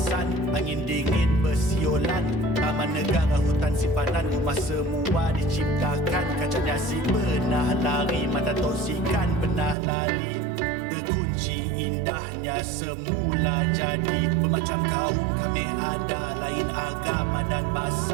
angin dingin bersiolan. Taman negara hutan simpanan, rumah semua diciptakan. Kacanya si pernah lari, mata tosikan pernah lali. Terkunci indahnya semula jadi. Bermacam kaum kami ada, lain agama dan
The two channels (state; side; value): drops out; left; at 9.8 s